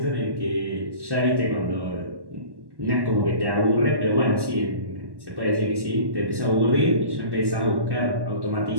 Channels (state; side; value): late; left; 1.1 ms